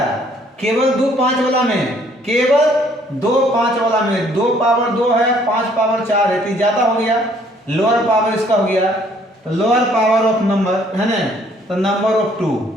केवल 2 5 वाला में, केवल 2 5 वाला में 2 पावर 2 है, 5 पावर 4 है, तो ज्यादा हो गया। लोअर पावर इसका हो गया, तो लोअर पावर ऑफ नंबर, है ना। तो नंबर ऑफ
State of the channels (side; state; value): both; normal; correlation 0.62